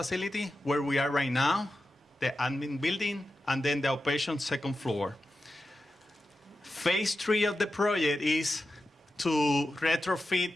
where we are right now, the admin building, and then the outpatient second floor. Phase 3 of the project is to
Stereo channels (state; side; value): normal; both; correlation 0.91